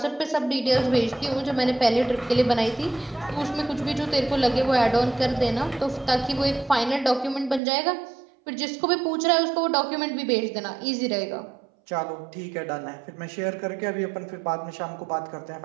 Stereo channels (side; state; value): left; drops out; at 7.6 s